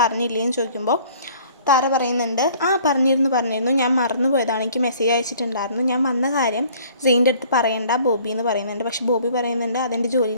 ചോദിക്കുമ്പോൾ താര പറയുന്നുണ്ട്, പറഞ്ഞിരുന്നു, ഞാൻ മറന്നു പോയതാണ്, എനിക്ക് മെസ്സേജ് അയച്ചിട്ടുണ്ടായിരുന്നു, ഞാൻ വന്ന കാര്യം സെയിൻ്റെ അടുത്ത് പറയണ്ട ബോബി എന്ന് പറയുന്നുണ്ട്. പക്ഷേ ബോബി പറയുന്നുണ്ട് അതെൻ്റെ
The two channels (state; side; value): inverted; both; correlation -0.54